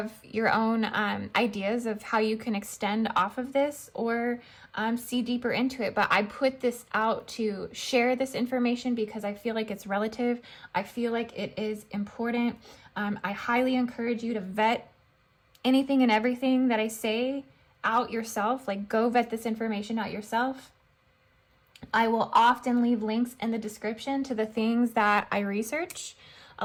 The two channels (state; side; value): identical; both; correlation 1.00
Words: your own ideas of how you can extend off of this or see deeper into it. But I put this out to share this information because I feel like it's relative. I feel like it is important. I highly encourage you to vet anything and everything that I say out yourself. Like, go vet this information out yourself. I will often leave links in the description to the things that I research.